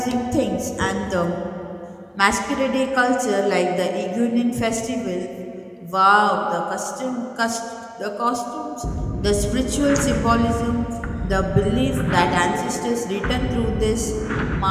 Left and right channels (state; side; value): identical; both; correlation 1.00